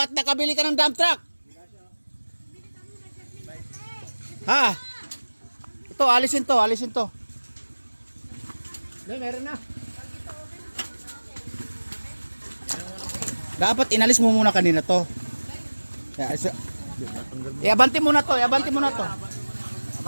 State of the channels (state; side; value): inverted; both; correlation -1.00